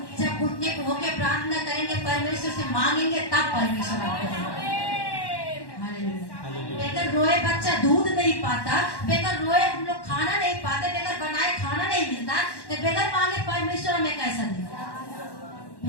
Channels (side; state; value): right; late; 1.1 ms